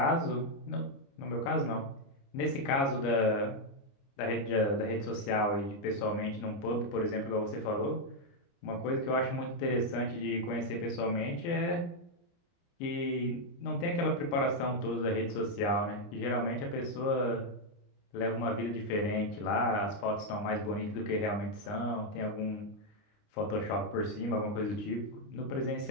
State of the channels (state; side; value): late; right; 29 ms